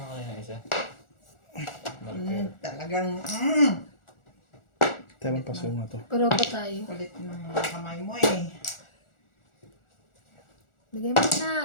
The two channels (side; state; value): right; late; 1.4 ms